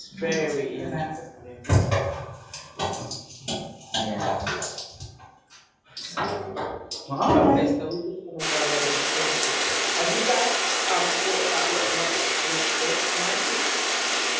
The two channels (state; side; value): identical; both; correlation 1.00